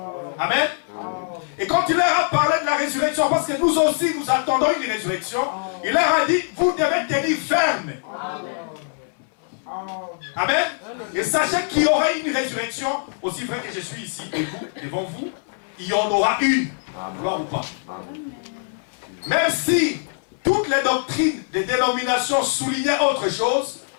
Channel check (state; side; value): silent; right; digital silence